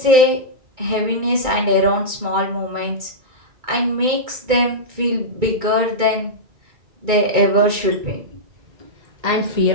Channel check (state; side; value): late; left; 2.3 ms